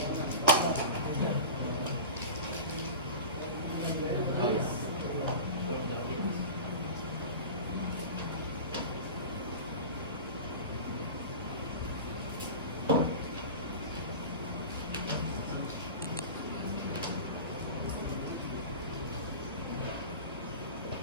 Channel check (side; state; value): both; inverted; correlation -0.31